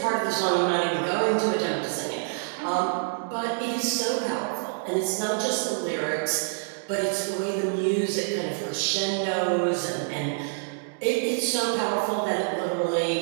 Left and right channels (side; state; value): left; silent; digital silence